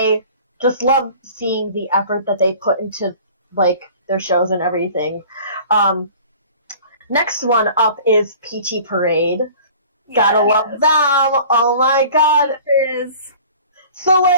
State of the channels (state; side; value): inverted; both; correlation -0.46